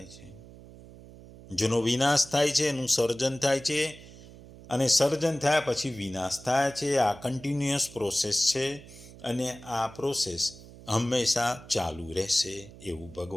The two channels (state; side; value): noise; right; hum, 19 dB below the sound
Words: છે, જેનો વિનાશ થાય છે એનું સર્જન થાય છે, અને સર્જન થયા પછી વિનાશ થાય છે. આ કન્ટિન્યુઅસ પ્રોસેસ છે અને આ પ્રોસેસ હંમેશા ચાલુ રહેશે એવું